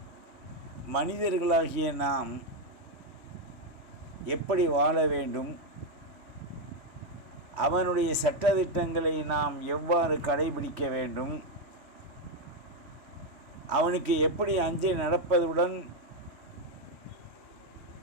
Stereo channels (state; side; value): late; left; 3.2 ms